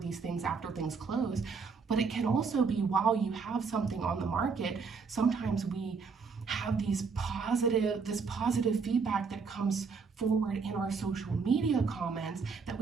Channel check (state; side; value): quieter; left; 5.2 dB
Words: things after things close, but it can also be while you have something on the market. Sometimes we have this positive feedback that comes forward in our social media comments that